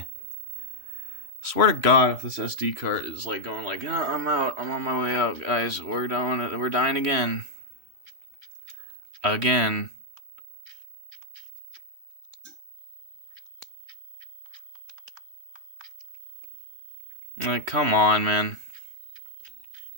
Swear to God, if this SD card is going oh, I'm out. I'm on my way out, guys. We're dying again. Again. Come on, man.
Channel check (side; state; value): left; late; 3.1 ms